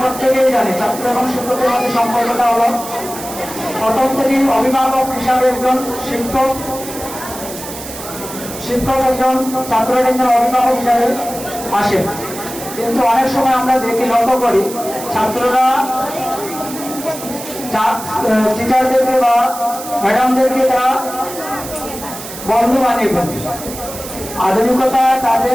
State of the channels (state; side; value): noise; right; hiss, 11 dB below the sound